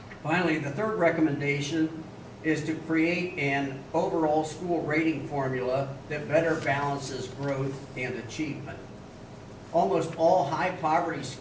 Finally, the third recommendation is to create an overall school rating formula that better balances growth and achievement. Almost all high poverty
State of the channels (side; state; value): both; identical; correlation 1.00